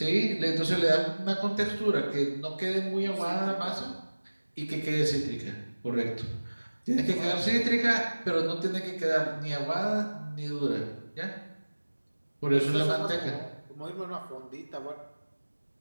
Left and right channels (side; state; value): both; inverted; correlation -1.00